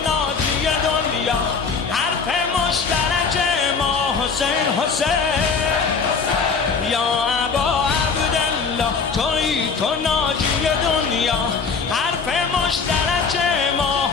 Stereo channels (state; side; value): quieter; right; 5.3 dB